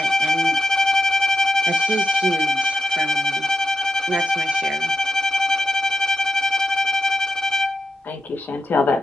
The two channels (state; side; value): normal; both; correlation 0.89